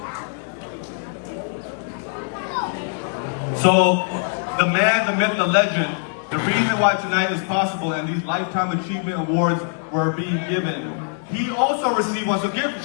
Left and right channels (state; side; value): silent; right; 64 dB below the other